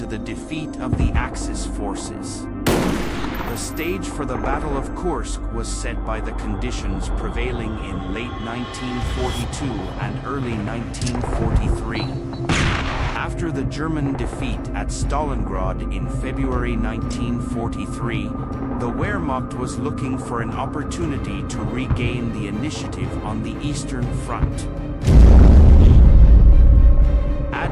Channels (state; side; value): identical; both; correlation 1.00